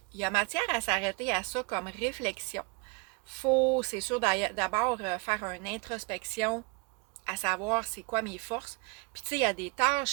il y a matière à s'arrêter à ça comme réflexion. Faut, c'est sûr, d'abord faire une introspection à savoir c'est quoi mes forces. Puis tu sais, il y a des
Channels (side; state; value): left; quieter; 28.5 dB